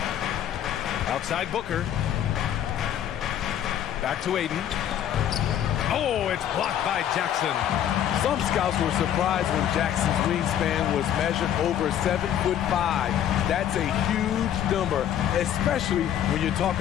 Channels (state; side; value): quieter; right; 10.4 dB